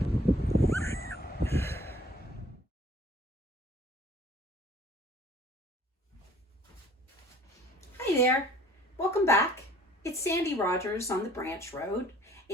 Hi there. Welcome back. It's Sandy Rogers on the Branch Road.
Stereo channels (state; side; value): normal; both; correlation 0.53